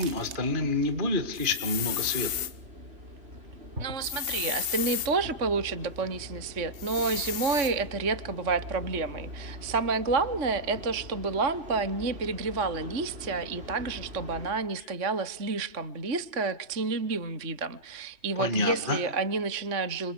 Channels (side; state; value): left; late; 2.8 ms